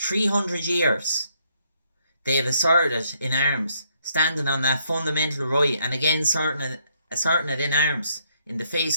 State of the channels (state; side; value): inverted; both; correlation -0.72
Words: 300 years, they have asserted it in arms, standing on that fundamental right, and again asserting it in arms in the face